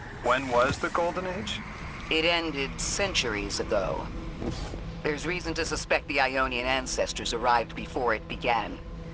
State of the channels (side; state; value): both; identical; correlation 1.00